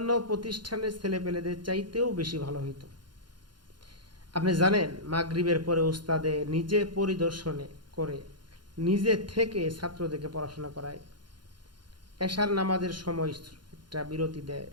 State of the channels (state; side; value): late; left; 0.71 ms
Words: প্রতিষ্ঠানের ছেলেপেলেদের চাইতেও বেশি ভালো হইতো। আপনি জানেন, মাগরিবের পরে উস্তাদে নিজে পরিদর্শনে করে নিজে থেকে ছাত্রদেরকে পড়াশোনা করায়। এশার নামাজের সময় একটা বিরতি দেয়,